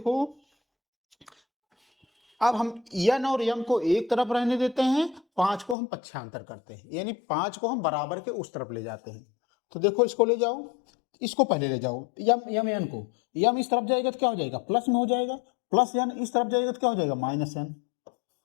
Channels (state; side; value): drops out; right; at 5.8 s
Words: अब हम n और m को एक तरफ रहने देते हैं, 5 को हम पक्षांतर करते हैं, यानी 5 को हम बराबर के उस तरफ ले जाते हैं। तो देखो इसको ले जाओ, इसको पहले ले जाओ, यम n को, यम इस तरफ जाएगा तो क्या हो जाएगा, प्लस में हो जाएगा, प्लस n इस तरफ जाएगा तो क्या हो जाएगा, माइनस n।